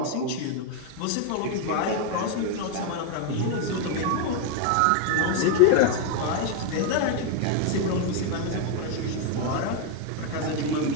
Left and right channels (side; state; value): both; different; correlation 0.01